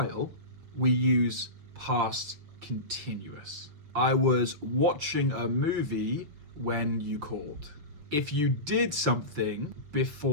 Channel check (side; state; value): left; late; 6.5 ms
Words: we use past continuous. I was watching a movie when you called. If you did something